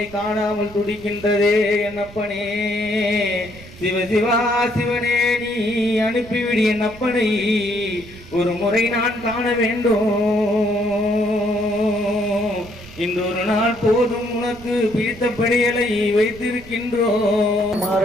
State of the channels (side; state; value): right; noise; rumble, 19 dB below the sound